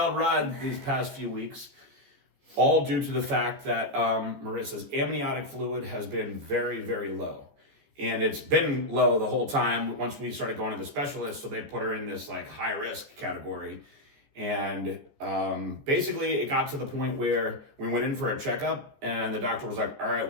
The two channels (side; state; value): left; late; 14 ms